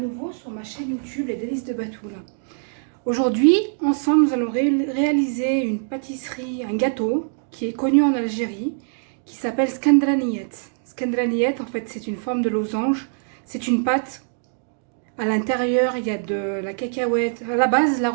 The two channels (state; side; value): silent; left; digital silence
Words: sur ma chaîne YouTube Les Délices de Batoul. Aujourd'hui, ensemble, nous allons réaliser une pâtisserie, un gâteau qui est connu en Algérie, qui s'appelle skandraniyet. Skandraniyet, en fait, c'est une forme de losange, c'est une pâte. À l'intérieur, il y a de la cacahuète. À la base, la